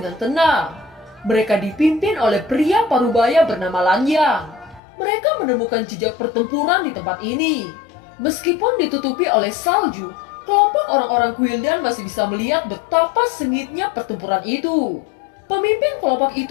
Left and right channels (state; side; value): drops out; right; at 4.8 s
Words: tenang. Mereka dipimpin oleh pria parubaya bernama Lan Yang. Mereka menemukan jejak pertempuran di tempat ini. Meskipun ditutupi oleh salju, kelompok orang-orang Guildan masih bisa melihat betapa sengitnya pertempuran itu. Pemimpin kelompok